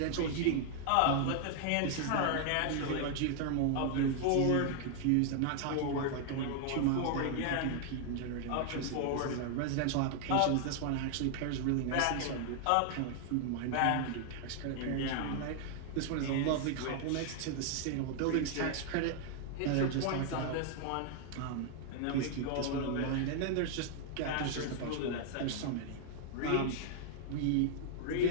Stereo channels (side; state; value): both; different; correlation 0.00